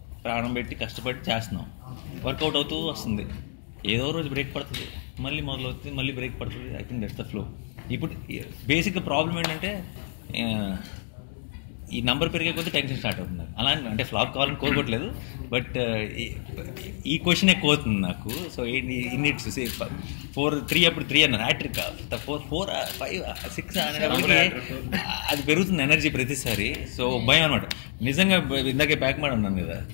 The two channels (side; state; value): right; silent; digital silence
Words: ప్రాణం పెట్టి కష్టపడి చేస్తున్నాం. వర్కౌట్ అవుతూ వస్తుంది. ఏదో రోజు బ్రేక్ పడుతుంది, మళ్ళీ మొదలవుతుంది, మళ్ళీ బ్రేక్ పడుతుంది. I think that's the flow. ఇప్పుడు బేసిక్గా ప్రాబ్లం ఏంటంటే ఈ నంబర్ పెరిగే కొద్దీ టెన్షన్ స్టార్ట్ అవుతుంది. అలా అంటే ఫ్లాప్ కావాలని కోరుకోవట్లేదు, బట్ ఈ క్వశ్చన్ ఎక్కువ అవుతుంది నాకు. సో ఇన్నిట్స్ 4-3 అప్పుడు 3 అన్నారు, హ్యాట్రిక్ 4, 5, 6 అనేటప్పటికి అది పెరుగుతుంది ఎనర్జీ ప్రతిసారి. సో భయం అనమాట. నిజంగా ఇందాకే బ్యాక్ మాట ఉన్నాను కదా,